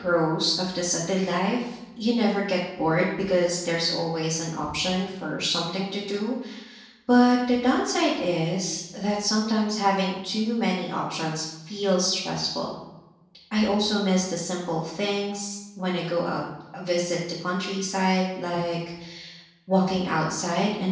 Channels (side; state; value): both; identical; correlation 1.00